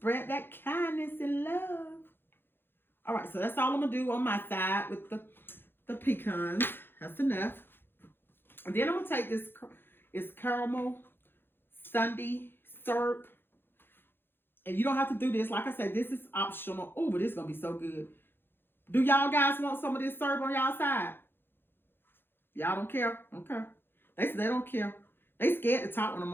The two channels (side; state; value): right; late; 0.10 ms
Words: that kindness and love. All right, so that's all I'm going to do on my side with the pecans. That's enough. And then I'm going to take this, it's Carmel Syrup. And you don't have to do this. Like I said, this is optional. Oh, but this is going to be so good. Do y'all guys want some of this syrup on y'all side? Y'all don't care? Okay. They say they don't care. They scared to talk when I'm